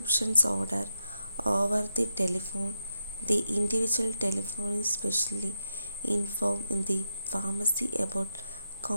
order over the telephone, the individual telephone is specially informed in the pharmacy about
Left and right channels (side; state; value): both; inverted; correlation -0.85